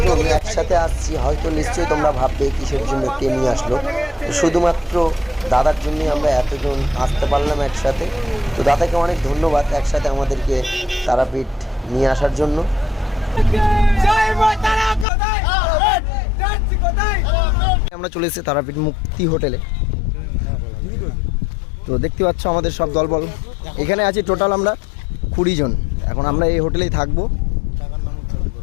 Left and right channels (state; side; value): drops out; right; at 15.1 s